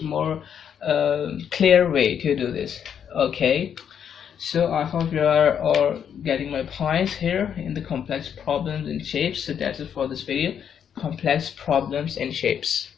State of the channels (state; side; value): quieter; right; 8.3 dB